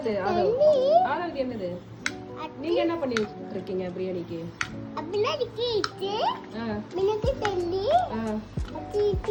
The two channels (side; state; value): both; identical; correlation 1.00